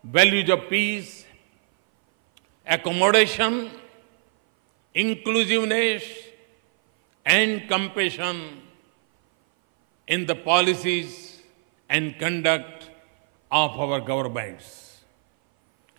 values of peace, accommodation, inclusiveness, and compassion in the policies and conduct of our governments.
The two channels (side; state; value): left; silent; 59 dB below the other